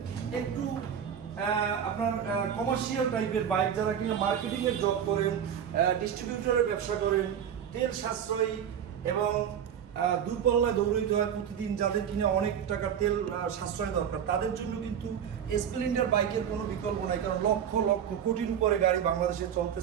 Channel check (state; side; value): quieter; left; 8.6 dB